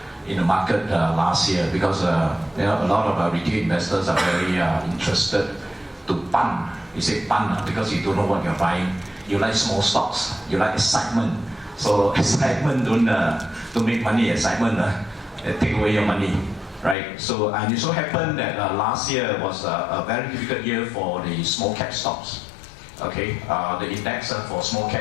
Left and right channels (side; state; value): right; drops out; at 16.9 s